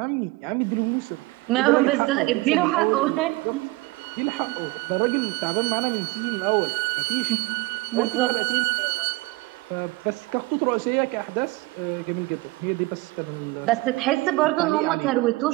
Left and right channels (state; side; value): quieter; left; 22.0 dB